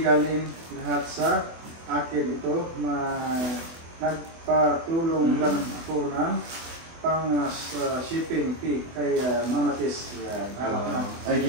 galing lahat sa akin ito na nagpatulong lang ako ng pang shipping fee kay Mama Tis. Ay,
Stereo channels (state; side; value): late; left; 24 ms